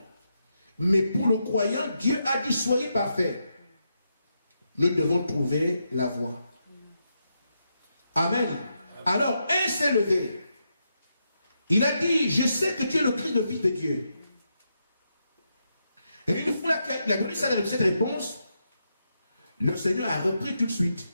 Mais pour le croyant, Dieu a dit, soyez parfaits. Nous devons trouver la voie. Amen. Alors, un s'est levé. Il a dit, je sais que tu es le Christ, le Fils de Dieu. Et une fois qu'il a donné cette réponse, le Seigneur a repris tout de suite.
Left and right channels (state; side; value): inverted; both; correlation -0.83